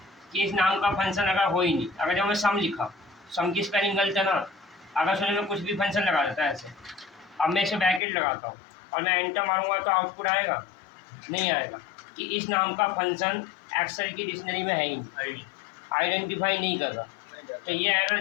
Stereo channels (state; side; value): drops out; right; at 8.0 s